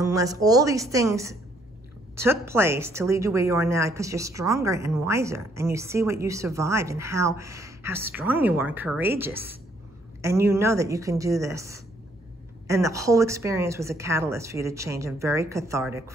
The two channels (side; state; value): both; normal; correlation 0.67